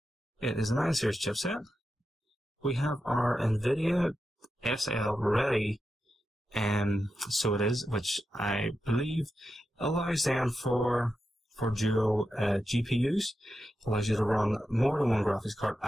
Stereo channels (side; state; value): both; normal; correlation 0.89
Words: It is a 9 series chipset. We have our NVIDIA SL ready, so it is, which I believe allows then for dual GPUs. Allows you to run more than one graphics card